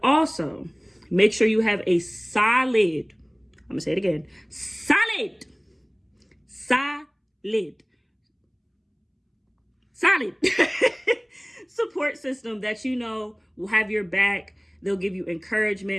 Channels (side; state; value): both; identical; correlation 1.00